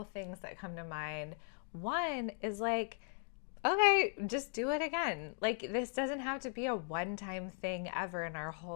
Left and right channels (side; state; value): right; silent; 52 dB below the other